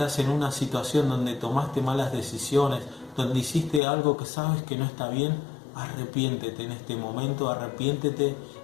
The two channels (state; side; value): drops out; right; at 3.8 s